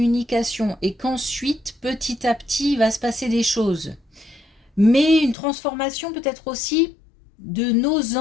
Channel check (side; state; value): right; drops out; at 5.4 s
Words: et qu'ensuite, petit à petit, il va se passer des choses. Mais une transformation peut-être aussi de nos